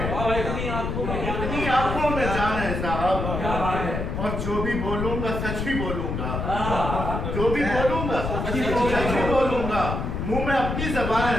इतनी आंखों में जान है साहब, और जो भी बोलूंगा सच ही बोलूंगा, जो भी बोलूंगा सच ही बोलूंगा। मुंह में अपनी जबान है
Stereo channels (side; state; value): left; noise; rumble, 3 dB below the sound